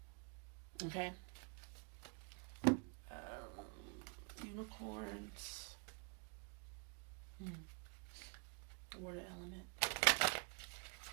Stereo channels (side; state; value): left; quieter; 34.7 dB